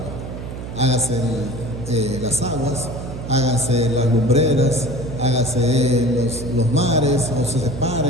Hágase las aguas, hágase las lumbreras, hágase los mares, o se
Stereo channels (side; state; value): right; noise; hum, 9 dB below the sound